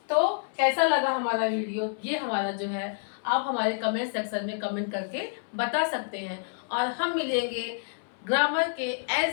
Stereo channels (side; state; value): right; silent; 59 dB below the other